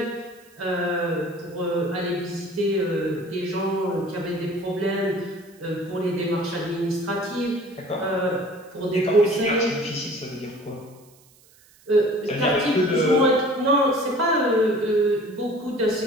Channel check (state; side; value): noise; right; hiss, 28 dB below the sound